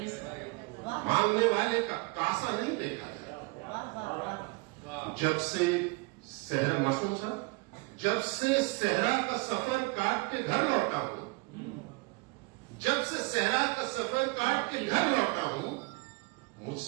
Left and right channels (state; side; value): quieter; left; 27.2 dB